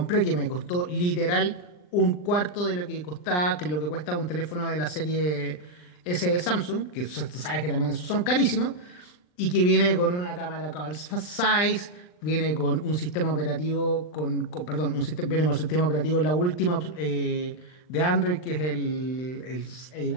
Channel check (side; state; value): right; late; 39 ms